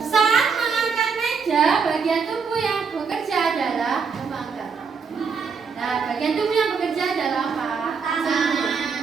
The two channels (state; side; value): quieter; left; 5.6 dB